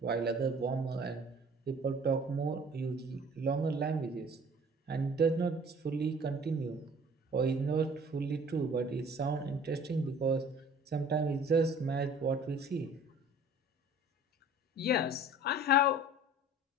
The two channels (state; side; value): normal; both; correlation 0.49